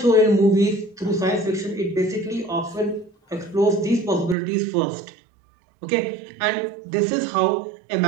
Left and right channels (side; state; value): left; drops out; at 4.4 s